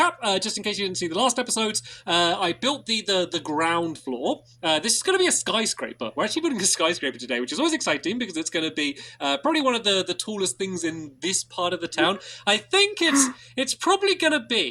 just in case you didn't see the last episodes, I built the ground floor. This is going to be a skyscraper. We're actually building a skyscraper today, which is always exciting because it's going to be probably one of the tallest things in this part of the town. I think it's probably going to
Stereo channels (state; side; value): identical; both; correlation 1.00